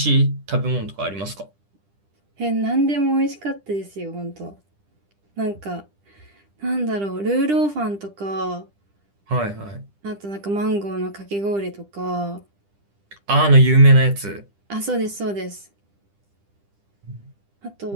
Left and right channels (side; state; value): left; late; 10 ms